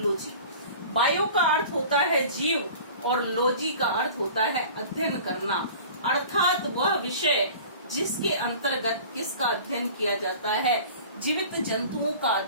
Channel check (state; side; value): inverted; both; correlation -0.42